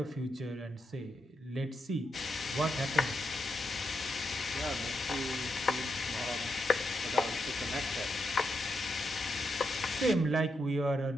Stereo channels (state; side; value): normal; both; correlation 0.83